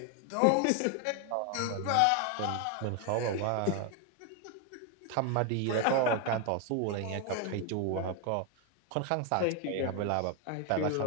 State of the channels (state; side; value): different; both; correlation 0.01